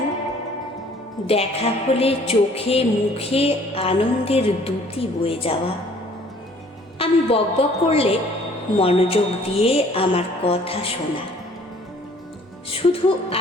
দেখা হলে চোখে মুখে আনন্দের দ্যুতি বয়ে যাওয়া, আমি বকবক করলে মনোযোগ দিয়ে আমার কথা শোনা, শুধু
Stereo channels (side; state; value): both; normal; correlation 0.56